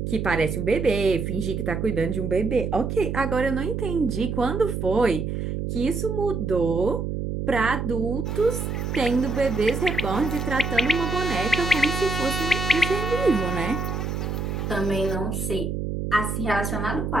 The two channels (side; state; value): right; noise; hum, 3 dB below the sound